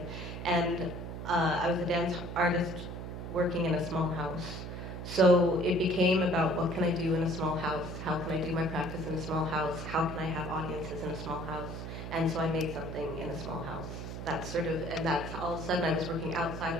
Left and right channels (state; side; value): noise; right; hum, 7 dB below the sound